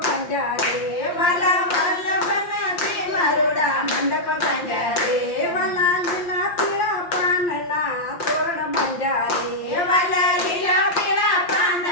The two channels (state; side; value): late; right; 5.7 ms